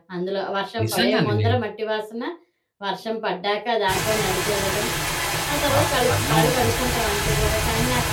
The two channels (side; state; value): both; identical; correlation 1.00